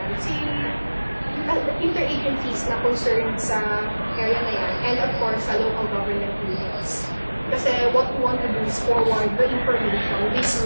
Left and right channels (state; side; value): inverted; both; correlation -1.00